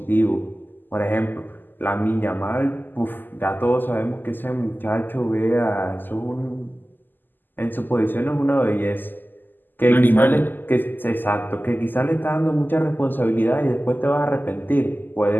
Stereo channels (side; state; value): right; late; 0.090 ms